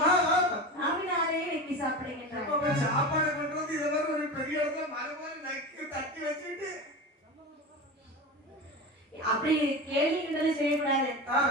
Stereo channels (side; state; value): both; normal; correlation 0.26